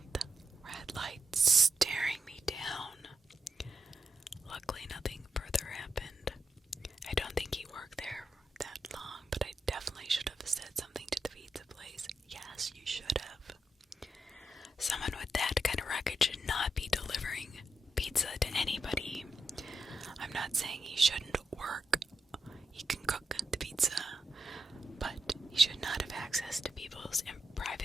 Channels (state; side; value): normal; both; correlation 0.86